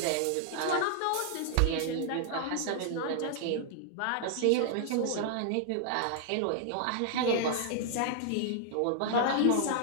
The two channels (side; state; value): both; different; correlation -0.01